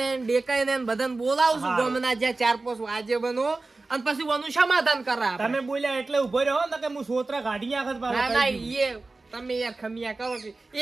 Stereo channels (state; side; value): quieter; left; 3.4 dB